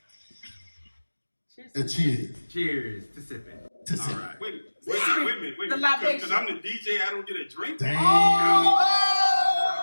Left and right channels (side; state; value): both; inverted; correlation -1.00